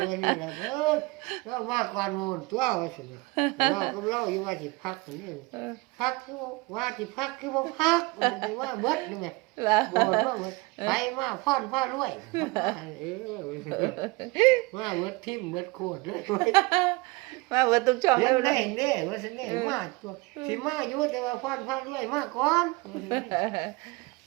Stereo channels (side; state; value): left; quieter; 24.4 dB